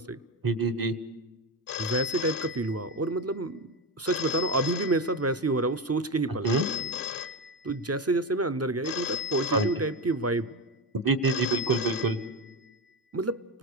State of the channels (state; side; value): normal; both; correlation 0.16